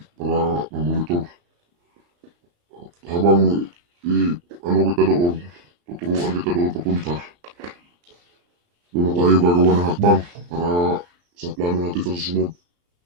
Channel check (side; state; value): left; late; 34 ms